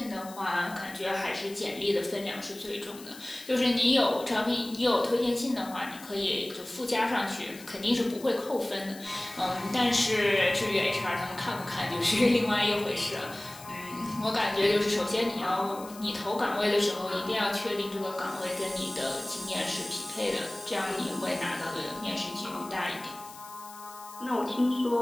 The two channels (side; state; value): left; noise; hiss, 18 dB below the sound